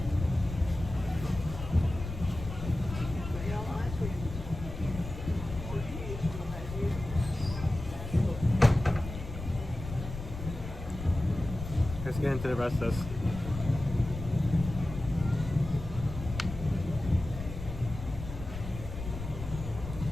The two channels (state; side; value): noise; left; rumble, 9 dB below the sound